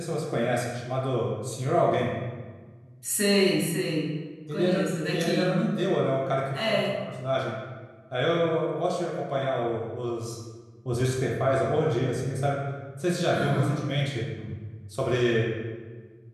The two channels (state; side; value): identical; both; correlation 1.00